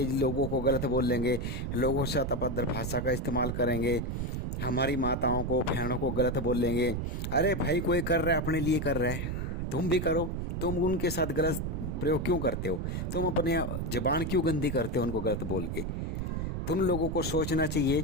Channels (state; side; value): noise; right; rumble, 3 dB below the sound